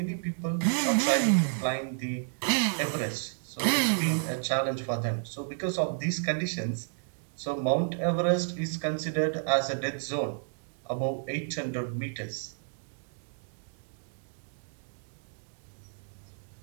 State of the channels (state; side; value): silent; left; digital silence